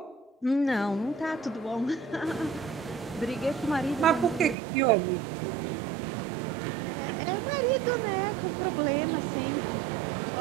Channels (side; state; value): left; drops out; at 4.5 s